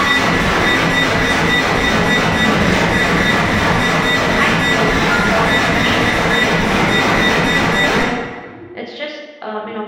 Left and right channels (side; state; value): both; identical; correlation 1.00